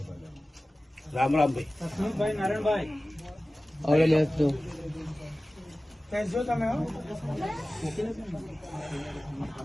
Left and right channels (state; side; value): normal; both; correlation 0.97